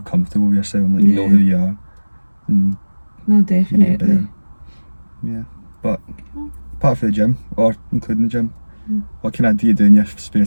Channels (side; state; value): both; inverted; correlation -1.00